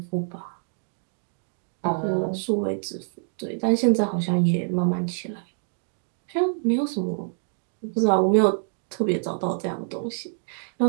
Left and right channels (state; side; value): silent; left; digital silence